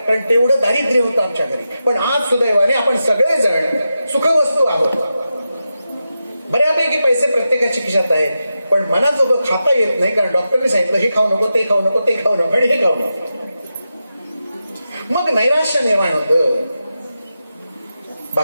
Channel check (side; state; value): both; inverted; correlation -0.89